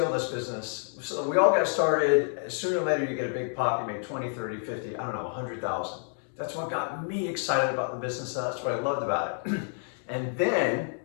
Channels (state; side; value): silent; right; 59 dB below the other